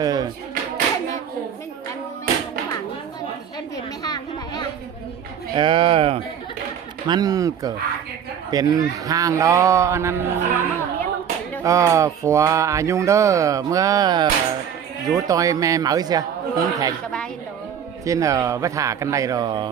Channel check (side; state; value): left; quieter; 8.4 dB